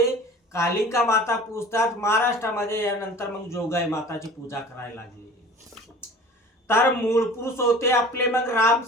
कालिंका माता पूजतात, महाराष्ट्रामध्ये यानंतर मग जोगाई माताची पूजा करायला लागली. तर मूळ पुरुष होते आपले मग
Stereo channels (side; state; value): both; normal; correlation 0.42